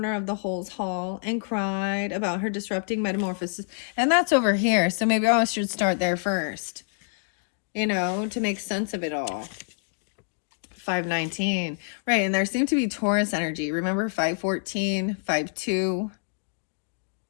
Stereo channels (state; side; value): silent; right; 60 dB below the other